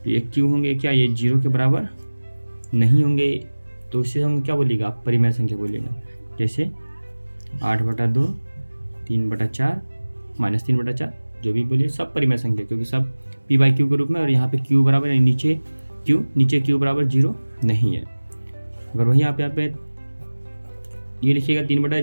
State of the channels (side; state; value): both; inverted; correlation -1.00